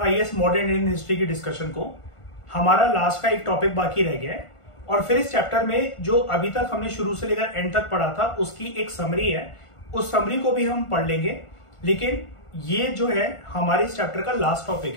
मॉडर्न इंडियन हिस्ट्री की डिस्कशन को। हमारा लास्ट का एक टॉपिक बाकी रह गया है और फिर इस चैप्टर में जो अभी तक हमने शुरू से लेकर एंड तक पढ़ा था उसकी एक समरी है, उस समरी को भी हम पढ़ लेंगे। लेकिन ये जो है हमारे इस चैप्टर का लास्ट टॉपिक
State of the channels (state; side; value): late; right; 1.5 ms